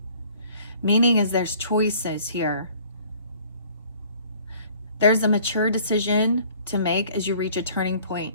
Meaning is there's choices here. There's a mature decision to make as you reach a turning point.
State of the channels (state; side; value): inverted; both; correlation -0.54